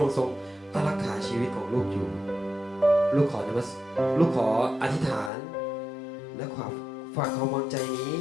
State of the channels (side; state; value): right; drops out; at 5.3 s